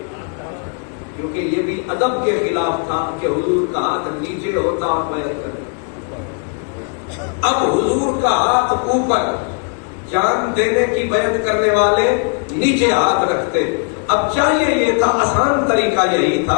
کیونکہ یہ بھی ادب کے خلاف تھا کہ حضور کا ہاتھ نیچے ہوتا اور بیعت کرتا. اب حضور کا ہاتھ اوپر، جان دینے کی بیعت کرنے والے نیچے ہاتھ رکھتے. اب چاہیے یہ تھا، آسان طریقہ یہی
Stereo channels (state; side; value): quieter; right; 38.5 dB